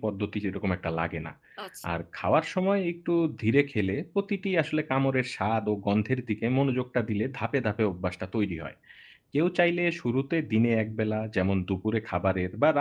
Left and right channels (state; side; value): identical; both; correlation 1.00